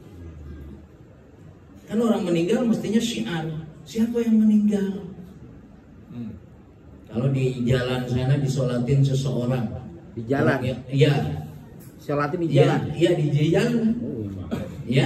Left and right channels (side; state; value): both; identical; correlation 1.00